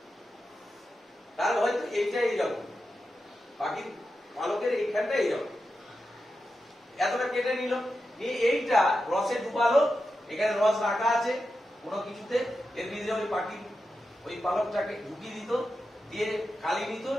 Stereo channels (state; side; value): normal; both; correlation 0.89